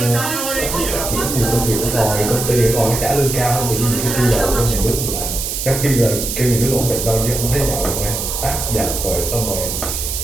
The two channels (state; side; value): noise; right; hiss, 3 dB below the sound